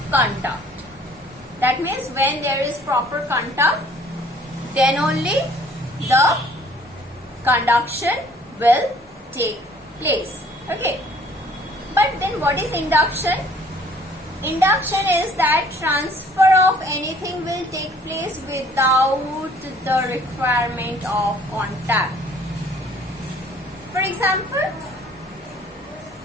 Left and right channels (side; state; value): both; normal; correlation 0.56